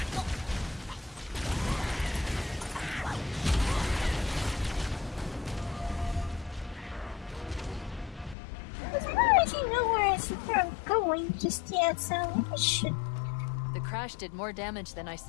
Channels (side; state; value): right; drops out; at 8.3 s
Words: I don't actually know where I'm going just yet, so I should. The crash did more damage than I